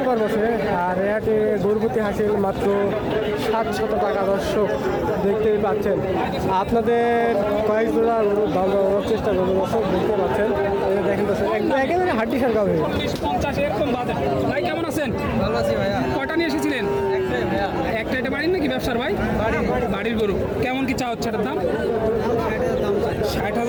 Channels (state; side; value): identical; both; correlation 1.00